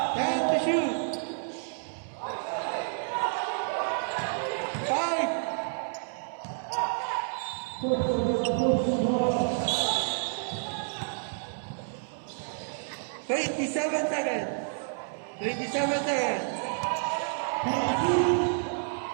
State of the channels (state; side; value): silent; left; 58 dB below the other